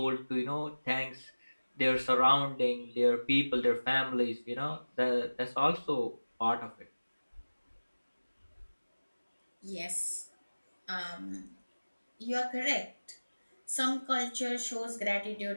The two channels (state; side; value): inverted; both; correlation -1.00